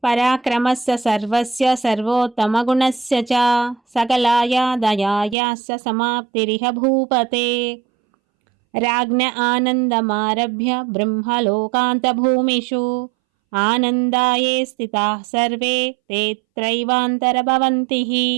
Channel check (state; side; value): drops out; left; at 5.4 s